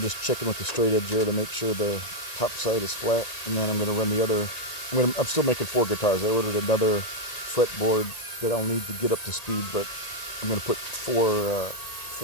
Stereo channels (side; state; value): right; late; 1.9 ms